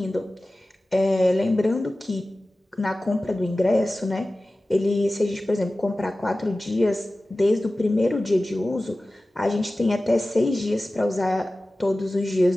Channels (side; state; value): both; normal; correlation 0.96